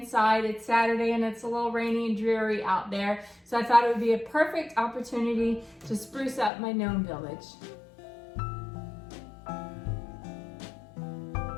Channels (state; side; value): drops out; right; at 6.5 s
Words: It's Saturday and it's a little rainy and dreary out there, so I thought it would be a perfect opportunity to spruce up my Gnome Village.